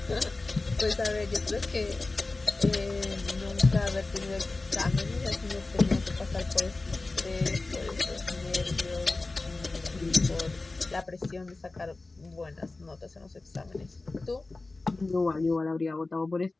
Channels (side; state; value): right; quieter; 3.3 dB